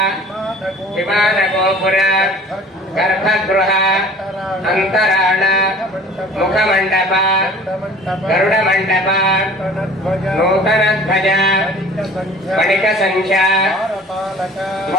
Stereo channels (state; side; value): normal; both; correlation 0.46